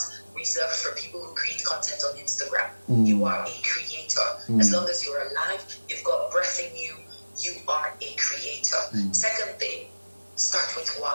reserved for people who create content on Instagram. You are a creator. As long as you're alive, you've got breath in you, you are a creator. Second thing, start with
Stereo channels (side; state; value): both; inverted; correlation -1.00